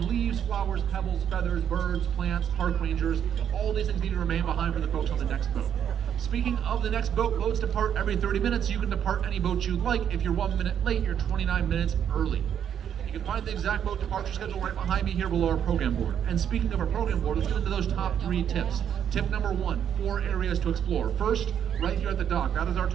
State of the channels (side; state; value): left; quieter; 9.0 dB